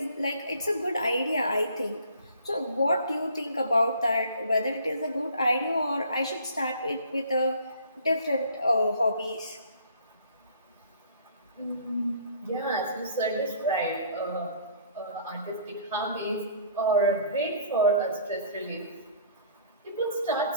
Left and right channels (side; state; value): both; inverted; correlation -0.53